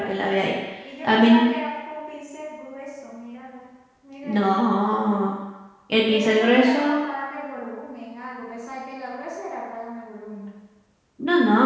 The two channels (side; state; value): both; identical; correlation 1.00